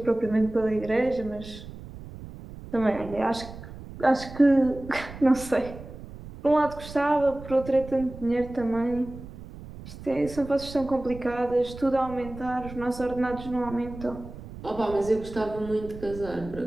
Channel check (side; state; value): right; noise; rumble, 14 dB below the sound